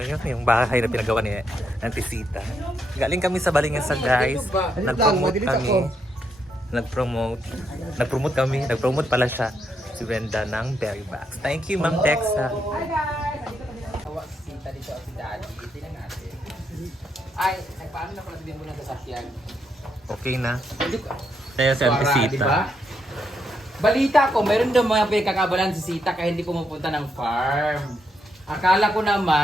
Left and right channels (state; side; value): normal; both; correlation 0.79